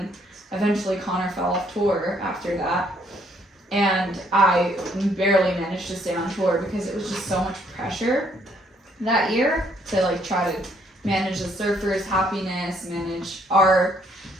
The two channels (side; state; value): both; normal; correlation 0.67